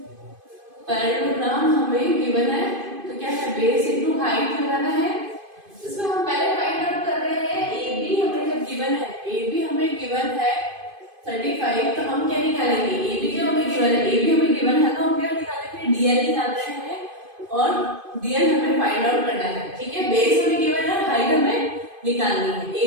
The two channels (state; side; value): late; left; 2.5 ms